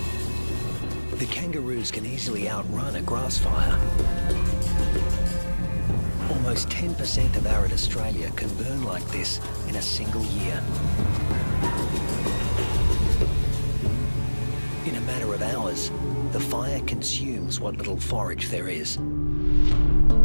The kangaroos can easily outrun a grass fire. Almost 10% of arid Australia can burn like this in a single year. In a matter of hours, the fire consumes what little forage there is.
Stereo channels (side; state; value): both; inverted; correlation -1.00